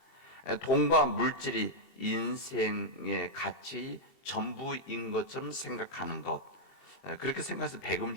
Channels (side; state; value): right; late; 23 ms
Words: 돈과 물질이 인생의 가치 전부인 것처럼 생각하는 것, 그렇게 생각해서